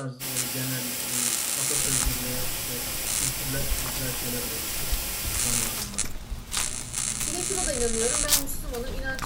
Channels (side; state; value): both; identical; correlation 1.00